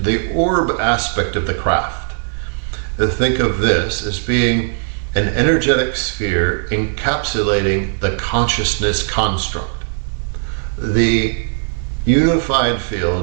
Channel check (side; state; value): left; silent; digital silence